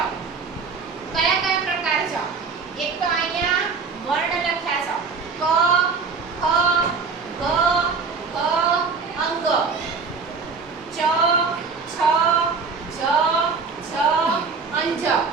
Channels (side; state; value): left; quieter; 4.9 dB